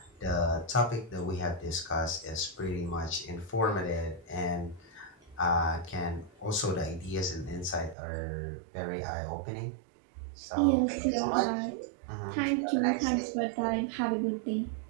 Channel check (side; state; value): left; drops out; at 8.0 s